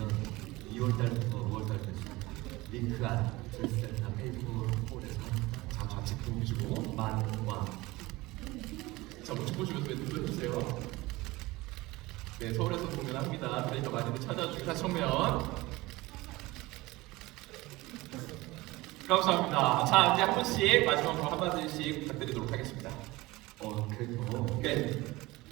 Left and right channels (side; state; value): left; quieter; 20.5 dB